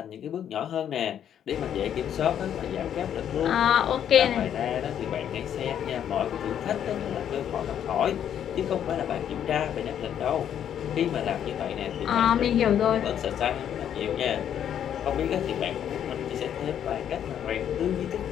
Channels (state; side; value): quieter; right; 9.6 dB